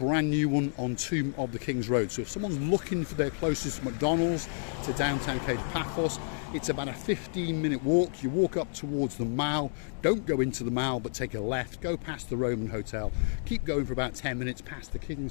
new one on Tomb of the King's Road. So if someone's looking for their closest McDonald's to downtown Kato Paphos, it's about a 15-minute walk. You walk up towards the Mall, don't go into the Mall but take a left, go past the Roman Hotel, keep going for about 10 minutes past the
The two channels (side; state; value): right; silent; digital silence